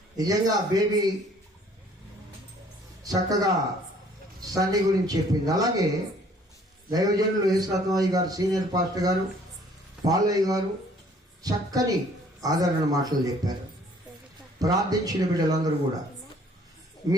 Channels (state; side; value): normal; both; correlation 0.58